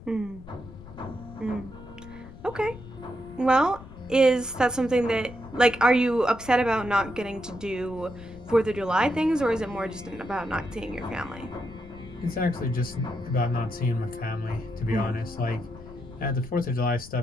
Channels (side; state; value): left; noise; rumble, 17 dB below the sound